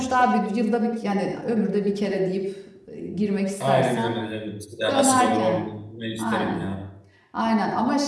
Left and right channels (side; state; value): both; identical; correlation 1.00